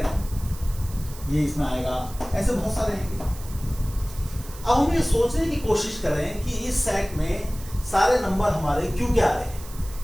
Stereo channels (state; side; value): noise; right; hiss, 17 dB below the sound